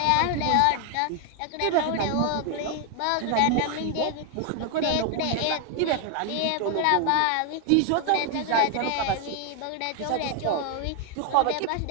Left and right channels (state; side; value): different; both; correlation 0.01